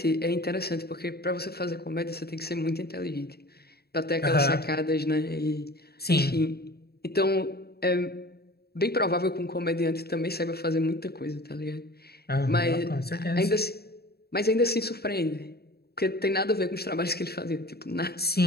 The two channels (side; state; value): right; late; 0.46 ms